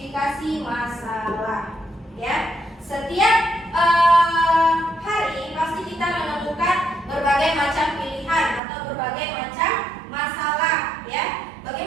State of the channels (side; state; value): left; drops out; at 8.6 s